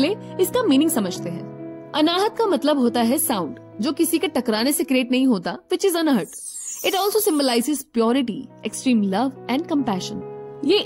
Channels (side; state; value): both; identical; correlation 1.00